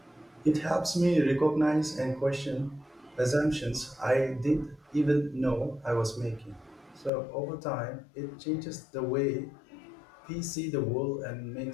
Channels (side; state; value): right; drops out; at 7.1 s